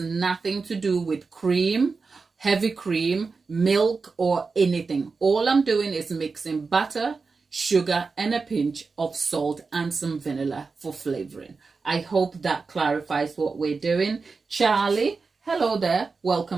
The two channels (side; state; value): left; quieter; 4.5 dB